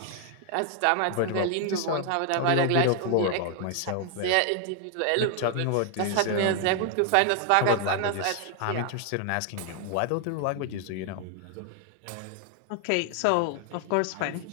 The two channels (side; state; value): both; different; correlation 0.00